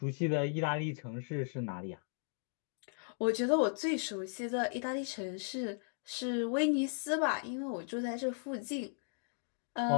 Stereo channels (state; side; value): silent; right; digital silence